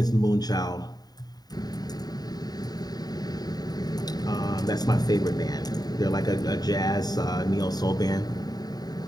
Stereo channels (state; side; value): late; right; 0.19 ms